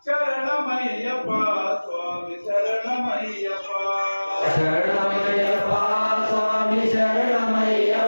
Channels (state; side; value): inverted; both; correlation -1.00